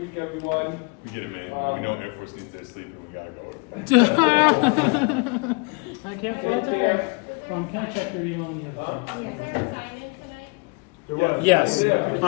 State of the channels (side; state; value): right; quieter; 31.3 dB